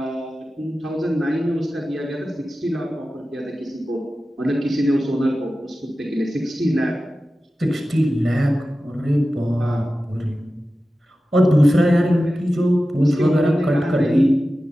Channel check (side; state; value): both; normal; correlation 0.94